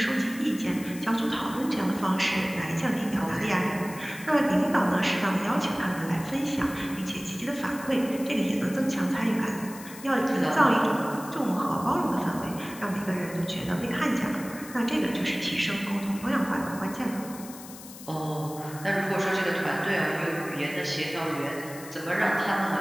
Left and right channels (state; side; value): noise; left; hiss, 16 dB below the sound